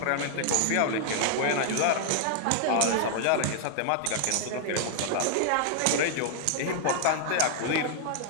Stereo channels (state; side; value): different; both; correlation 0.00